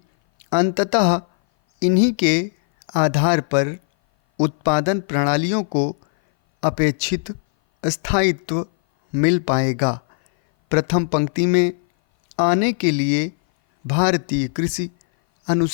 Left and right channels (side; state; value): right; silent; 59 dB below the other